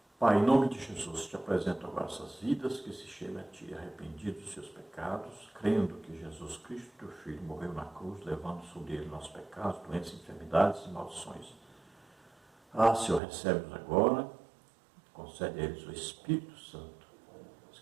Pai, em nome de Jesus, te apresento agora essas vidas que se chegam a ti, arrependidos dos seus pecados, crendo que Jesus Cristo, teu Filho, morreu na cruz, levando sobre ele nossos pecados, doenças, enfermidades e maldições. Senhor, recebe-nos agora, concede a eles o Espírito Santo,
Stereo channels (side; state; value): left; drops out; at 13.2 s